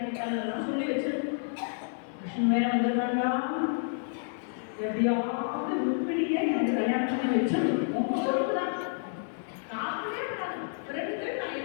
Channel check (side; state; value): right; silent; 57 dB below the other